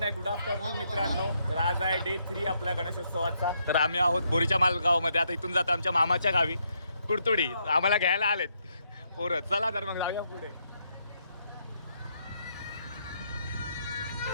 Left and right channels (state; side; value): inverted; both; correlation -0.76